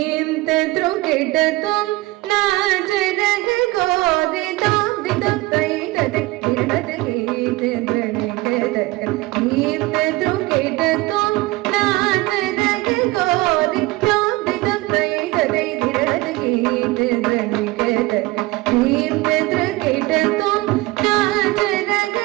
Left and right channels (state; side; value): quieter; left; 20.6 dB